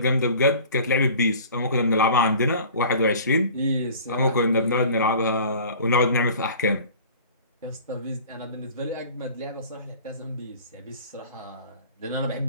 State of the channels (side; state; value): both; inverted; correlation -0.44